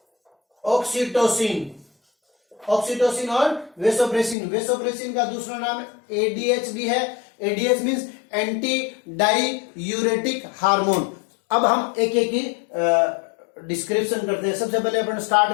ऑक्सीटोसिन और वेसोप्रेसिन का दूसरा नाम ADH भी है। ADH means anti diuretic hormone. अब हम एक एक की डिस्क्रिप्शन करते हैं। सबसे पहले अपन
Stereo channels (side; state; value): right; drops out; at 4.4 s